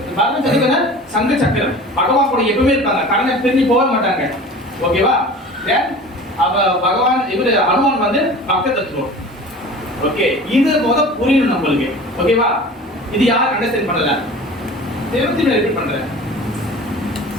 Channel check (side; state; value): both; normal; correlation 0.40